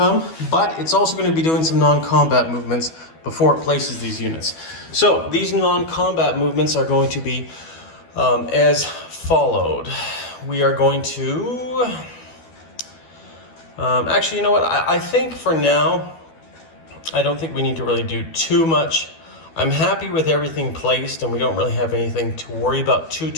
but it's also going to be doing some non-combat movements before it places these units. So these non-combat movements are going to be as followed. We are going to actually, you know what, I think for now I don't think we need to really do too much. I'm happy with everything placed, and we don't really have anything to worry about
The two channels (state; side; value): late; right; 12 ms